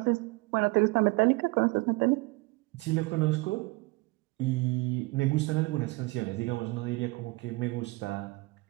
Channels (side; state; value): left; quieter; 24.0 dB